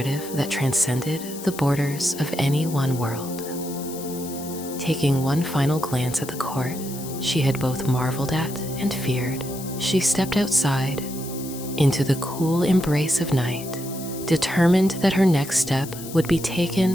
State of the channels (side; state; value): left; noise; hiss, 13 dB below the sound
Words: that transcended the borders of any one world. Taking one final glance at the court she had both marveled at and feared, she stepped outside into the cool embrace of night, determined that her next step would be